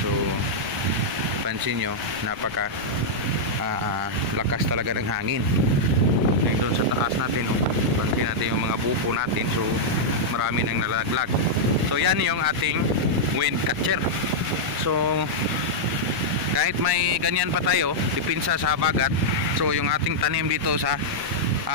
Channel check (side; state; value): left; noise; rumble, 21 dB below the sound